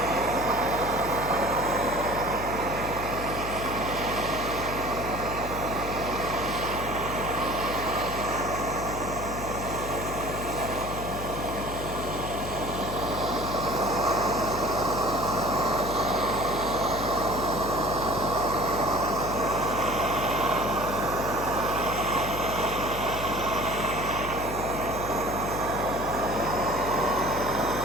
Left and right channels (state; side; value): noise; left; hum, 8 dB below the sound